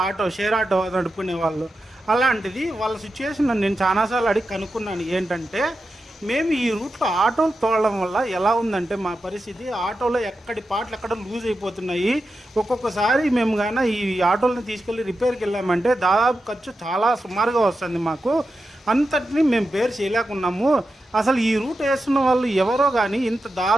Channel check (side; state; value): both; normal; correlation 0.90